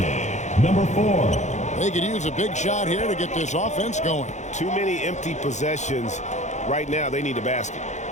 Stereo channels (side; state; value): right; late; 0.34 ms